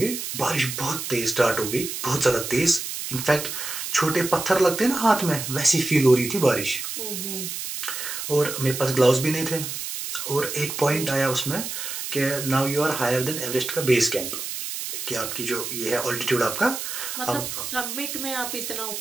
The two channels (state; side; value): noise; right; hiss, 5 dB below the sound